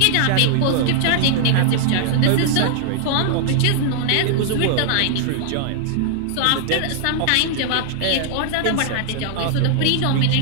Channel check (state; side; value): different; both; correlation -0.01